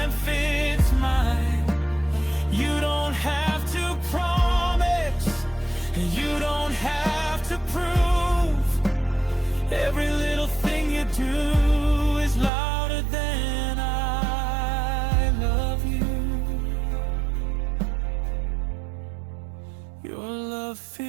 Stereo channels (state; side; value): drops out; left; at 12.5 s